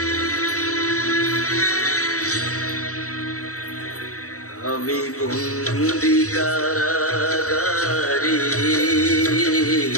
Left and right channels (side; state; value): right; late; 0.65 ms